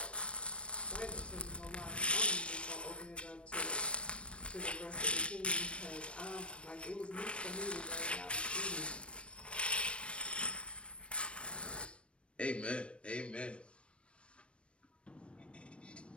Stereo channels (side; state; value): right; late; 0.059 ms